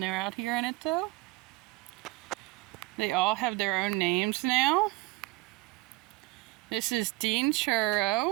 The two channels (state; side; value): quieter; left; 21.3 dB